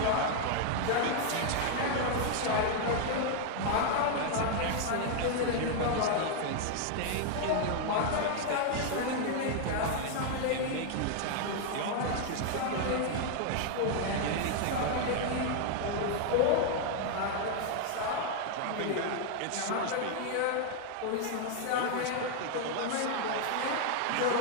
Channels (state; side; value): different; both; correlation 0.00